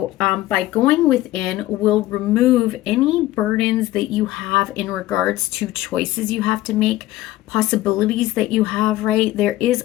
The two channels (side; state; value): right; quieter; 16.1 dB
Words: by going within, will remove any burdens that you have in regards to choices you have to make, possibilities that you have, right? There is